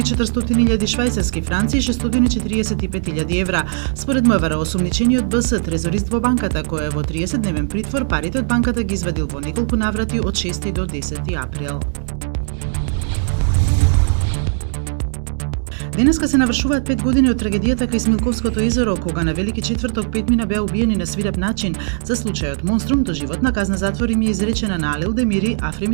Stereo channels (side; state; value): left; silent; digital silence